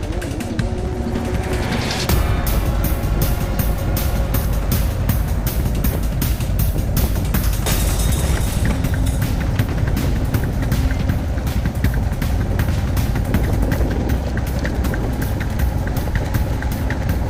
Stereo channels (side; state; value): both; identical; correlation 1.00